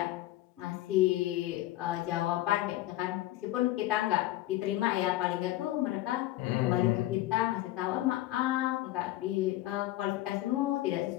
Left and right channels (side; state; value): right; quieter; 15.7 dB